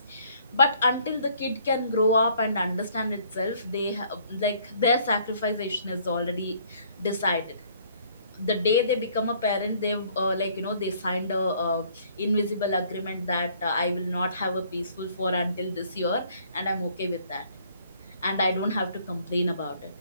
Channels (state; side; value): inverted; both; correlation -0.60